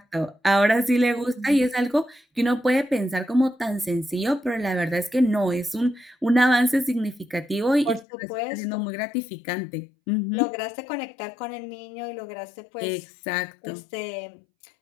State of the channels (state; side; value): drops out; right; at 8.1 s